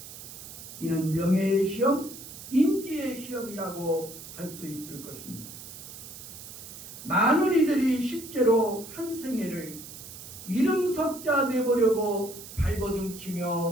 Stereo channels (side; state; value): right; noise; hiss, 13 dB below the sound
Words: 이는 명예의 시험, 인기의 시험이라고 할 수 있을 것입니다. 많은 이들이 실제로 한 생애를 이름석자 내보려고